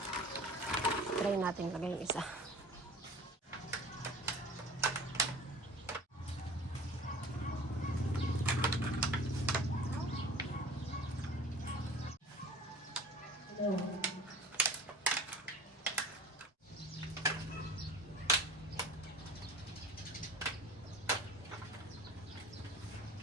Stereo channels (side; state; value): both; normal; correlation 0.41